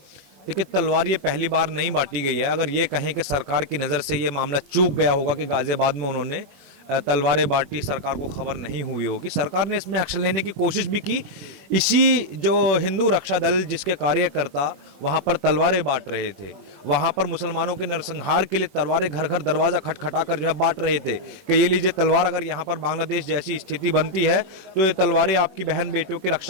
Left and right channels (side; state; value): left; late; 21 ms